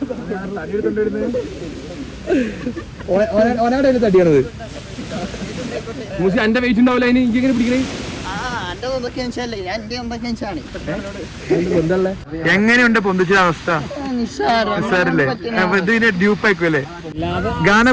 ഓനാടെ തടിയാണത് എന്റെ വെയിറ്റ് ഉണ്ടാവില്ല അതിന് എനിക്ക് എങ്ങനെ പിടിക്കണേ എങ്ങനെയുണ്ട് പൊന്തിച്ച അവസ്ഥ നിസ്സാരല്ലേ ഇതിന്റെ ഡ്യൂപ്പായിക്കുമല്ലേ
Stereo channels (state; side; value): identical; both; correlation 1.00